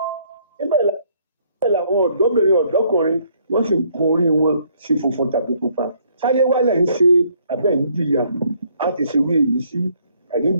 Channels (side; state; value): both; inverted; correlation -0.66